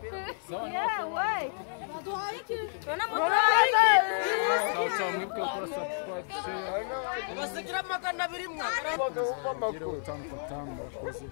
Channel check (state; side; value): silent; right; 58 dB below the other